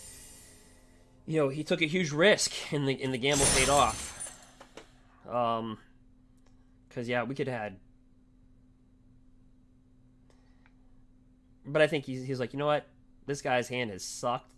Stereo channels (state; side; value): identical; both; correlation 1.00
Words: you know, he took a huge risk, and the gamble paid off. Because yeah, we could have had. But I think he's like, you know what? This guy's hand has sucked